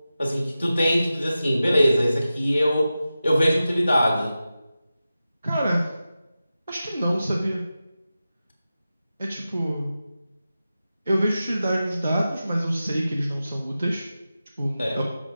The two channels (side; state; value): both; inverted; correlation -0.93